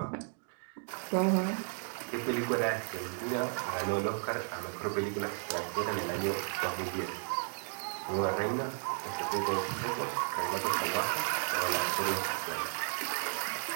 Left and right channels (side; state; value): left; silent; 55 dB below the other